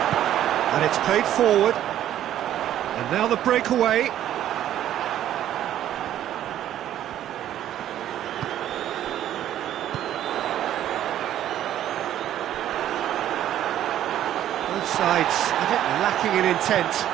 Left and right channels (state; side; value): quieter; left; 11.8 dB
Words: And it's played forward. And now the breakaway. Both sides a bit lacking in intent.